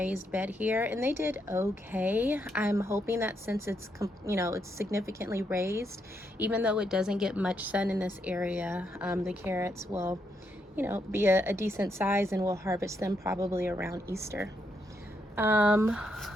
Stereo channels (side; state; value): both; normal; correlation 0.79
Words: bed here, and they did okay. I'm hoping that since it's significantly raised, even though it doesn't get much sun in this area, the carrots will be a decent size, and we'll harvest them probably around Easter.